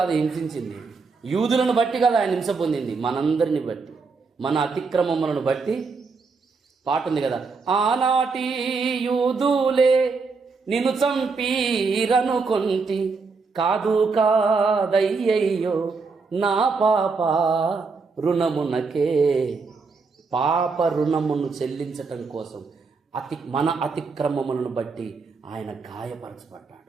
హింసించింది, యూదులను బట్టి కాదు ఆయన హింస పొందింది, మనందరిని బట్టి, మన అతిక్రమములను బట్టి. పాట ఉంది కదా, ఆనాటి యూదులే నిన్ను చంపీరనుకొంటి, కాదు కాదయ్యయ్యో నా పాప రుణమునకే. పాప రుణమును చెల్లించటం కోసం మన అతిక్రమములను బట్టి ఆయన గాయపరచబడ్డాడు.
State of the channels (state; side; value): quieter; left; 4.6 dB